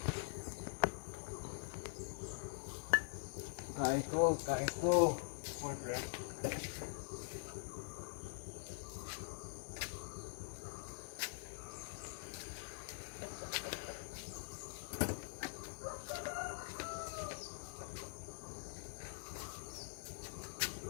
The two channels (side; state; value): right; silent; digital silence